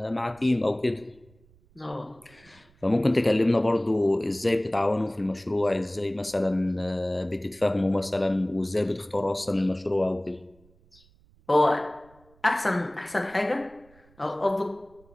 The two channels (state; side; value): noise; right; rumble, 29 dB below the sound